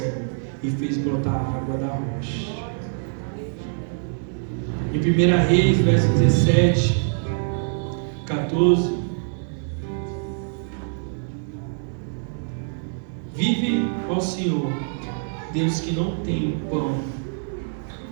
e fez brotar água da rocha. Em 1 Reis, verso 17, 14: vive ao Senhor, Deus que não tem pão,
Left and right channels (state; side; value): silent; left; digital silence